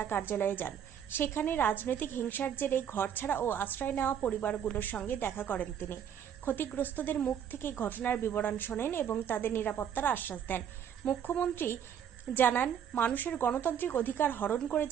কার্যালয়ে যান। সেখানে রাজনৈতিক হিংসার জেরে ঘরছাড়া ও আশ্রয় নেওয়া পরিবারগুলোর সঙ্গে দেখা করেন তিনি। ক্ষতিগ্রস্তদের মুখ থেকে ঘটনার বিবরণ শোনেন এবং তাদের নিরাপত্তার আশ্বাস দেন। মুখ্যমন্ত্রী জানান, মানুষের গণতান্ত্রিক অধিকার হরণ করে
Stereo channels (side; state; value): left; quieter; 8.8 dB